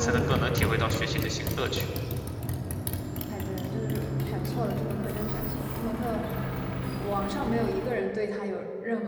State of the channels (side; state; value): both; identical; correlation 1.00